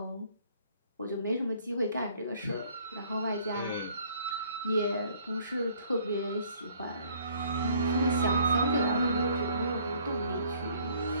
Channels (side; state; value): both; inverted; correlation -0.60